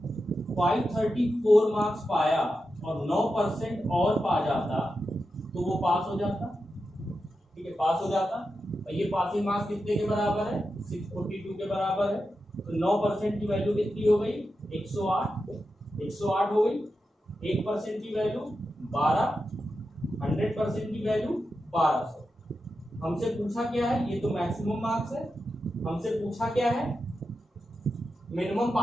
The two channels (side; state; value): both; normal; correlation 0.89